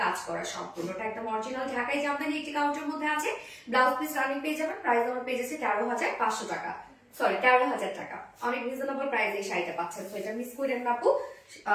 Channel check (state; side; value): identical; both; correlation 1.00